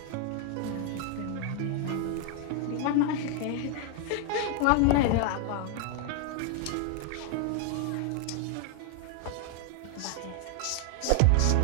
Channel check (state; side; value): different; both; correlation 0.00